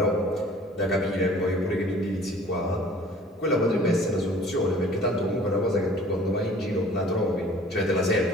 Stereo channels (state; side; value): normal; both; correlation 0.50